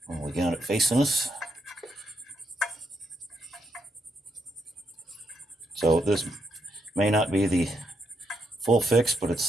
And we got it facing us. So this may not be the full fix, but it's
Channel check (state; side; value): normal; both; correlation 0.79